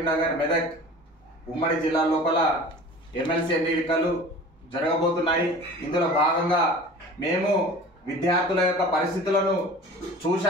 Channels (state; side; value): normal; both; correlation 0.41